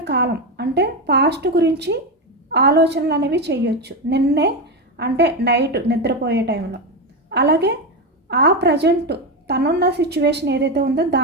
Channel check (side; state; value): both; normal; correlation 0.13